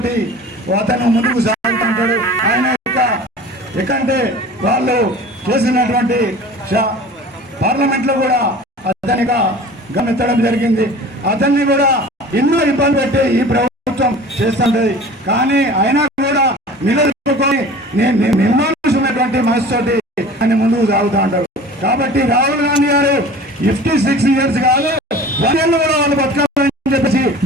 అతను ముందుకు సాగుతుంటాడు. ఆయన ఎక్కడంటే వాళ్ళు చేసినటువంటి పార్లమెంట్లో కూడా అతనిగా గమనించడం జరిగింది. అతన్ని కూడా ఎన్నో ఇబ్బంది పెట్టి ఈ ప్రభుత్వం చేస్తుంటది. కానీ అయినా కూడా నిలదొక్కుని నిర్మాణించినటువంటి మనసుతోటి ఆయన ముందుకు సాగుతూ ఉంటారు. కాబట్టి రాహుల్ గాంధీ గారు 56 years కాదు, 1 year కూడా వాళ్ళు బతకాలని చెప్పేసి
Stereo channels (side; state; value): both; normal; correlation 0.41